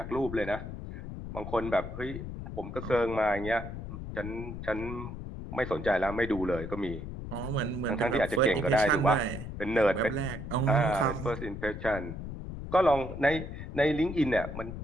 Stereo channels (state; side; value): noise; left; rumble, 8 dB below the sound